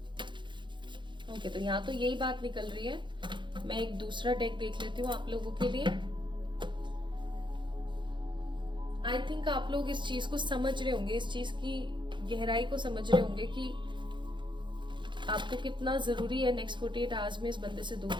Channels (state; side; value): late; left; 0.23 ms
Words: ओके, तो यहाँ तो यही बात निकल रही है। मैं एक दूसरा डेक देख लेती हूँ आप लोगों के लिए। आई थिंक आप लोग इस चीज को समझ रहे होंगे, इस चीज की गहराई को समझ रहे होंगे कि आपको कितना जरूरी है नेक्स्ट 48 आवर्स में इस बंदे से दूर